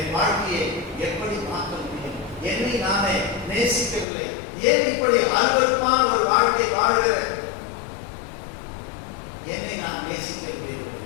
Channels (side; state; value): right; drops out; at 4.0 s